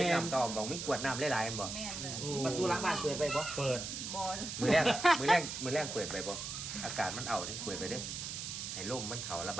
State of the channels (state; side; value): noise; right; hiss, 6 dB below the sound